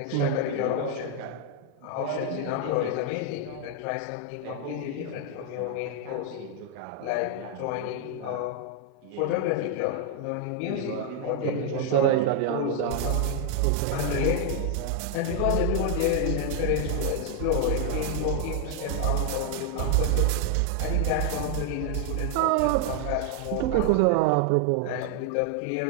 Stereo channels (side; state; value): both; different; correlation 0.00